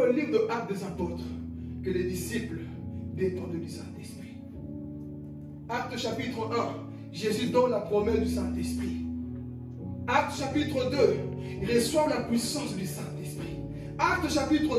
livre de Actes des Apôtres, que les disciples dépendent du Saint-Esprit. Acte chapitre 1, Jésus donne la promesse du Saint-Esprit. Acte chapitre 2, il reçoit la puissance du Saint-Esprit. Acte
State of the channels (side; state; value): both; identical; correlation 1.00